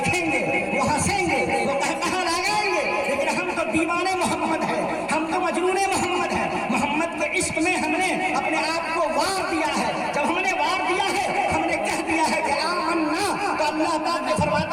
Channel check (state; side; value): identical; both; correlation 1.00